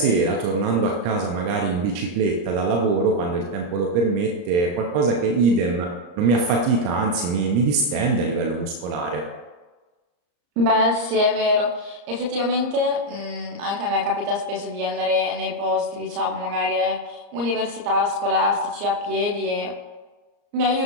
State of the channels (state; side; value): late; left; 34 ms